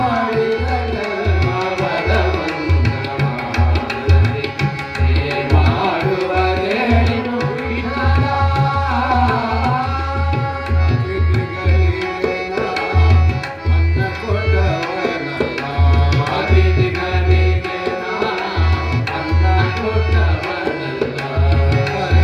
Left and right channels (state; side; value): identical; both; correlation 1.00